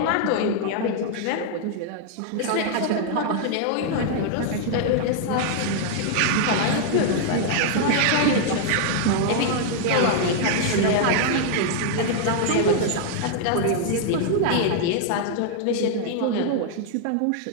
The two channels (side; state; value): both; different; correlation 0.00